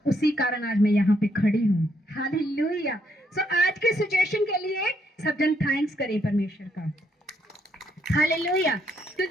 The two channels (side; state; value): both; normal; correlation 0.73